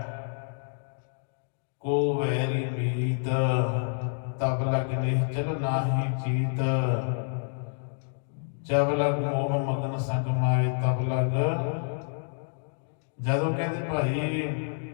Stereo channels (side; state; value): right; silent; digital silence